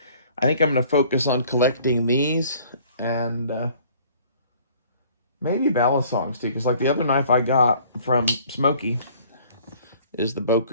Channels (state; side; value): inverted; both; correlation -0.55